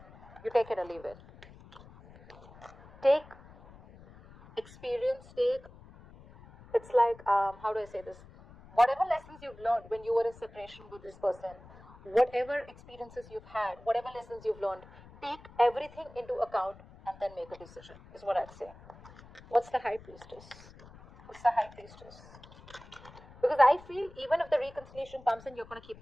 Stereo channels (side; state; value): left; noise; rumble, 21 dB below the sound